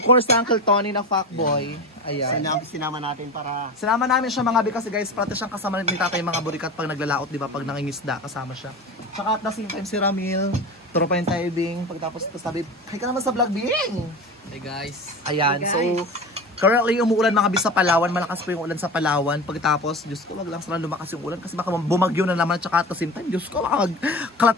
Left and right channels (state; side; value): normal; both; correlation 0.29